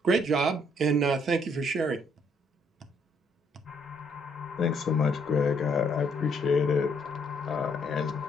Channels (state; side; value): normal; both; correlation 0.68